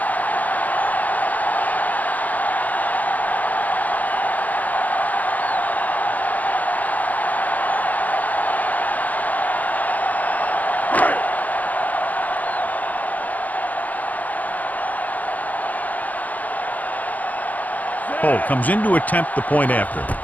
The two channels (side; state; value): right; late; 0.078 ms